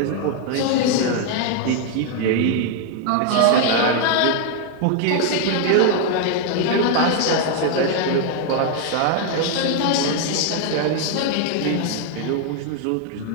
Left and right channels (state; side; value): different; both; correlation 0.00